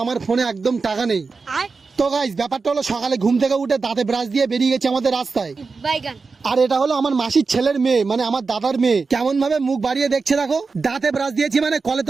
আমার ফোনে একদম টাকা নেই। তো গাইস ব্যাপারটা হলো, সকালে ঘুম থেকে উঠে দাঁতে ব্রাশ দিয়ে বেরিয়ে গেছে আমাদের রাস্তায়। আর এটা হলো আমার মাসির ছেলের মেয়ে, মানে আমার দাদার মেয়ে। কেমন ভাবে মুখ বাড়িয়ে দেখছে দেখো। দাঁতে ব্রাশ দিয়েছি মানে কলে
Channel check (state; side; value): quieter; left; 4.5 dB